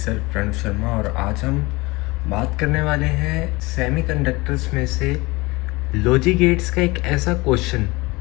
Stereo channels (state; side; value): quieter; right; 23.2 dB